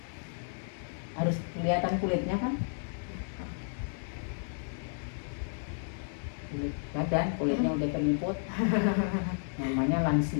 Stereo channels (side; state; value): right; silent; digital silence